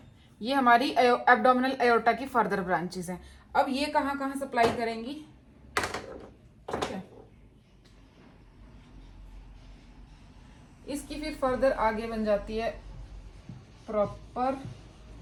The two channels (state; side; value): identical; both; correlation 1.00